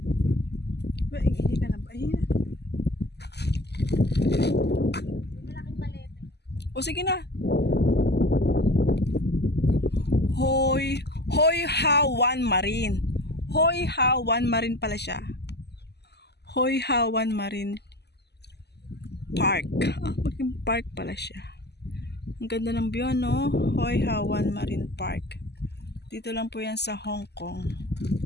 Uy, hindi ka na ba? Ayun na. Malaking palete. O sige na. Hoi Ha Wan Marine. Hoi Ha Wan Marine pala siya. Hoi Ha Wan Marine Park. Maging park pala siya. Ang ganda ng view, no? Hoi Ha Wan Marine Park. Dito lang po yan sa Hong Kong.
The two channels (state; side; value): late; right; 0.49 ms